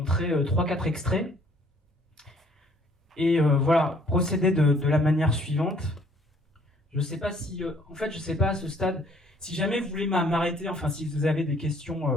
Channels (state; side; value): normal; both; correlation 0.60